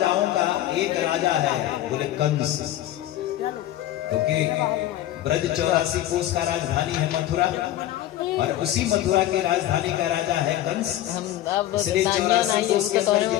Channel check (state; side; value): quieter; right; 13.4 dB